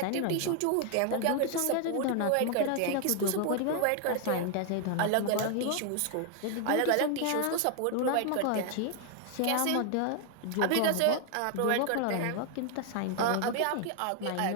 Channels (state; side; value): different; both; correlation 0.00